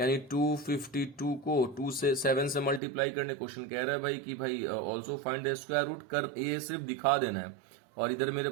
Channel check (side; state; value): left; drops out; at 2.8 s